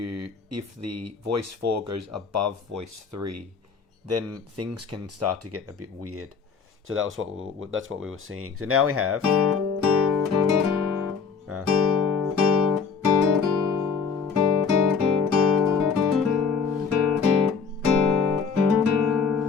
the voice 4 goes above voice 3, then things can start to get a bit weird. So that's what we were seeing. So now we have.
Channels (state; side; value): quieter; right; 5.6 dB